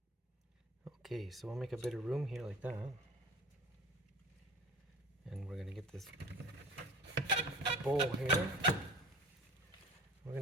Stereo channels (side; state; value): both; normal; correlation 0.41